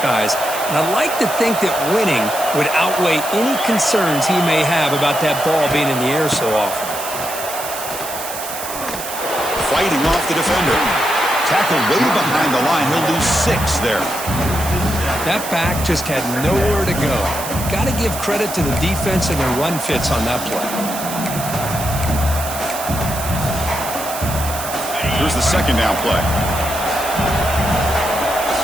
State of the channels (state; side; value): noise; right; hiss, 8 dB below the sound